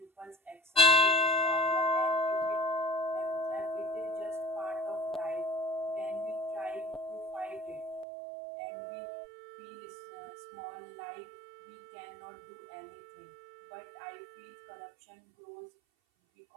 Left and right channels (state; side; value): drops out; left; at 8.1 s